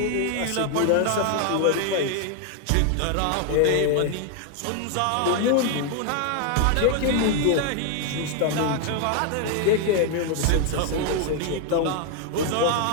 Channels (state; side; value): different; both; correlation 0.00